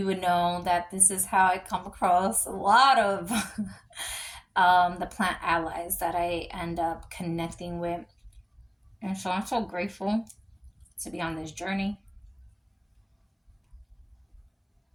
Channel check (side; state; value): both; identical; correlation 1.00